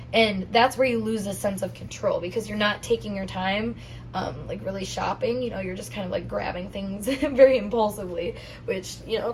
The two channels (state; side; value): identical; both; correlation 1.00